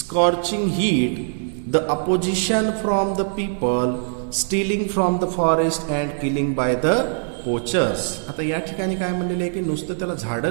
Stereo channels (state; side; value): silent; left; digital silence